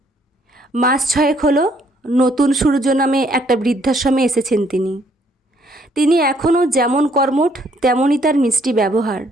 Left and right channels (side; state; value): both; normal; correlation 0.67